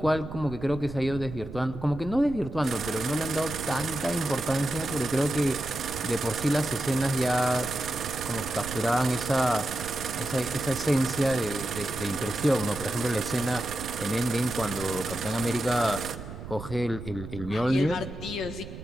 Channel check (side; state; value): right; noise; rumble, 11 dB below the sound